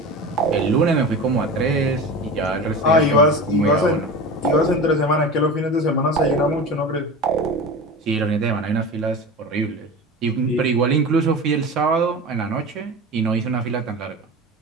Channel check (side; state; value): both; normal; correlation 0.30